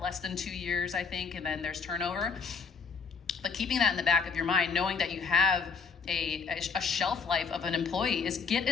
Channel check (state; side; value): quieter; right; 5.5 dB